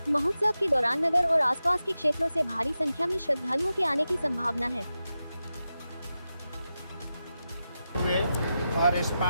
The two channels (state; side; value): inverted; both; correlation -0.91